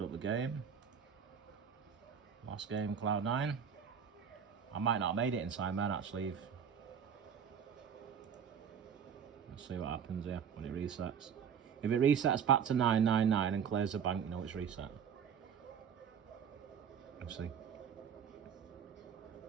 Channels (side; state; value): left; quieter; 7.5 dB